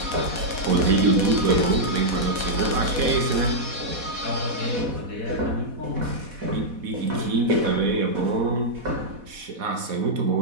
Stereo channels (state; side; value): late; left; 4.1 ms